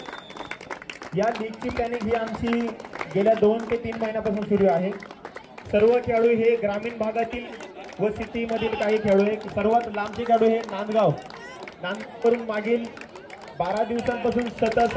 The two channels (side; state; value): both; identical; correlation 1.00